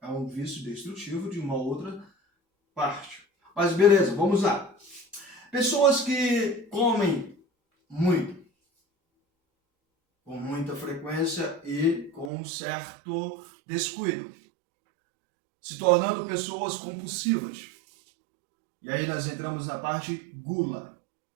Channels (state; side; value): drops out; left; at 12.3 s